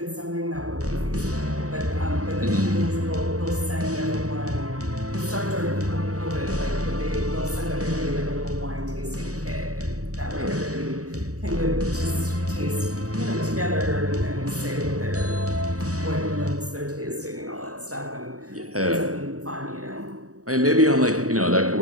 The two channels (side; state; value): left; late; 0.66 ms